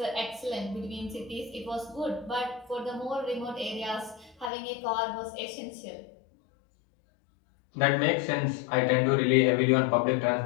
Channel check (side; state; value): right; drops out; at 4.5 s